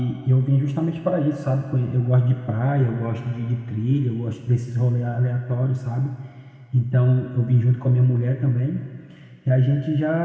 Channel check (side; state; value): both; identical; correlation 1.00